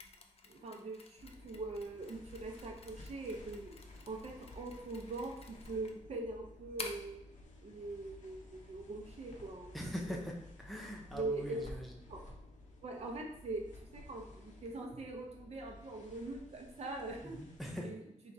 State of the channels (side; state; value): both; normal; correlation 0.50